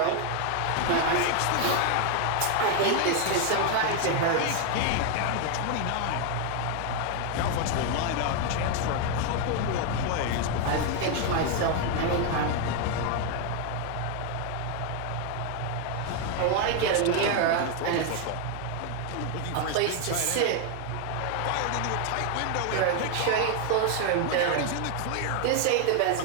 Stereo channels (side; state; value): both; different; correlation 0.01